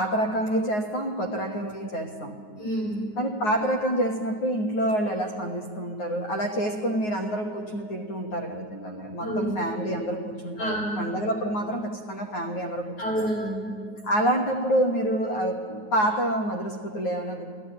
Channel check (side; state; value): right; late; 9.5 ms